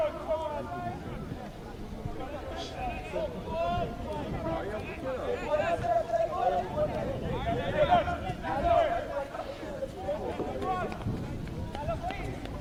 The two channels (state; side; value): identical; both; correlation 1.00